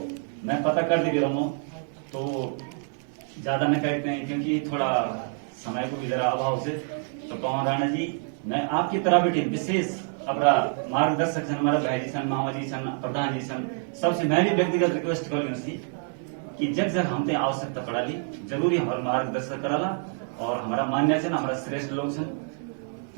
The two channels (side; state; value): left; silent; 55 dB below the other